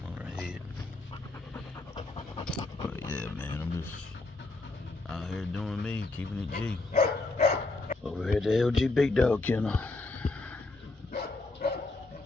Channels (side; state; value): right; quieter; 3.2 dB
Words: on her head. But yeah, man, I'm just out here doing me, keeping it G. Over here at the LG Big Dog Kennel.